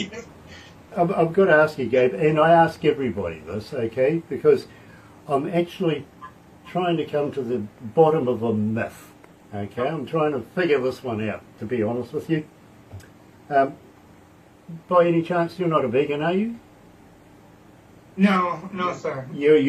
I've got to ask you, Gabe, and I ask everybody this, okay, because I'm actually trying to come to the bottom of a myth, okay? I'm trying to figure this one out, to be honest with you. By any chance, you're not a vegan, are you? No, sir. You're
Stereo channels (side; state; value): both; identical; correlation 1.00